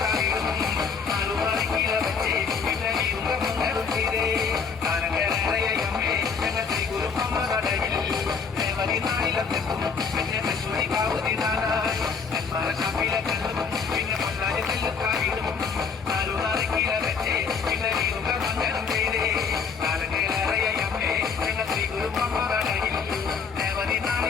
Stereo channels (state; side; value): quieter; right; 5.8 dB